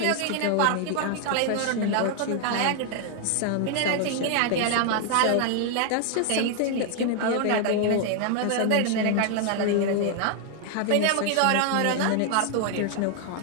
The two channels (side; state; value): both; different; correlation 0.00